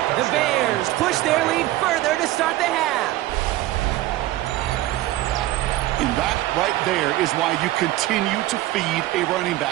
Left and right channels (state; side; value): quieter; left; 16.0 dB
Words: The Bears push their lead further to start the half. And that right there is why you continue to feed a running